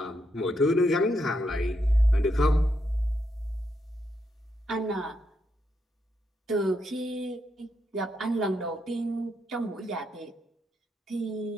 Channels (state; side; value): normal; both; correlation 0.81